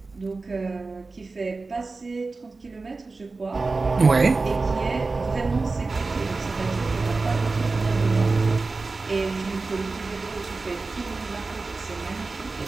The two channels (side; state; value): left; quieter; 3.7 dB